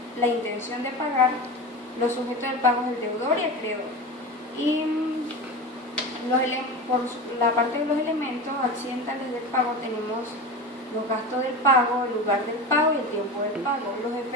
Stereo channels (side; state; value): both; normal; correlation 0.27